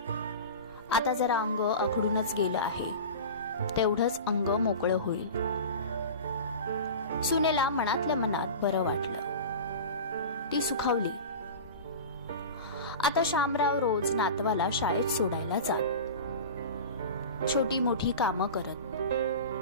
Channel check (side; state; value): both; inverted; correlation -0.32